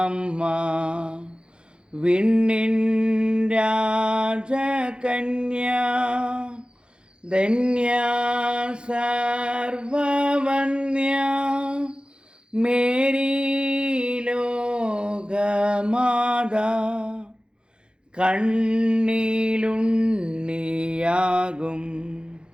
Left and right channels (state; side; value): late; left; 0.053 ms